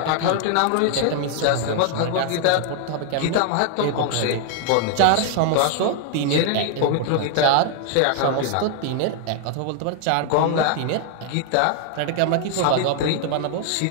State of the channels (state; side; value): different; both; correlation 0.00